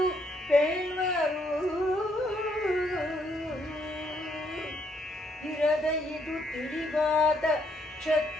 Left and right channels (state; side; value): normal; both; correlation 0.72